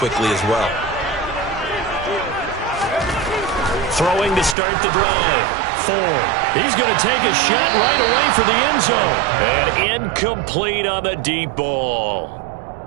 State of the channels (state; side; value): drops out; left; at 4.5 s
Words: as well. Throwing to start the drive. Ford. He's going to take a shot right away for the end zone. And incomplete on the deep ball.